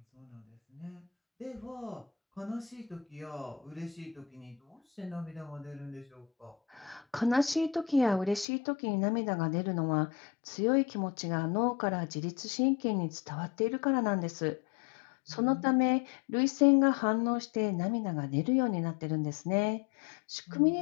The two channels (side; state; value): right; drops out; at 8.5 s